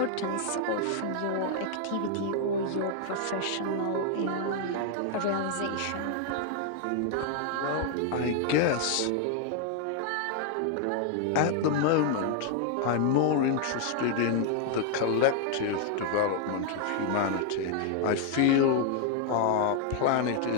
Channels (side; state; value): both; different; correlation 0.00